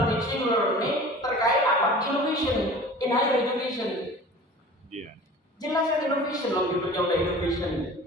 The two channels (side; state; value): both; normal; correlation 0.41